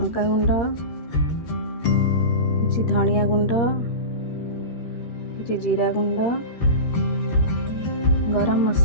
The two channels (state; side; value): late; right; 13 ms